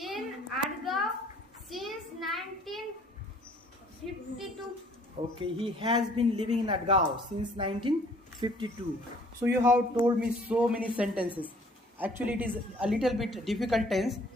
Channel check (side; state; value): both; normal; correlation 0.58